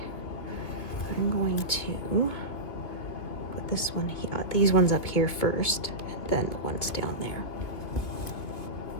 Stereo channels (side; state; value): right; late; 2.8 ms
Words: I'm going to put this one here, these ones up here first, and then the ones down there.